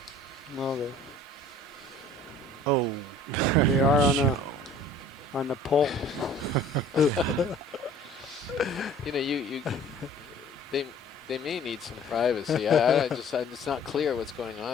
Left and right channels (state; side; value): normal; both; correlation 0.50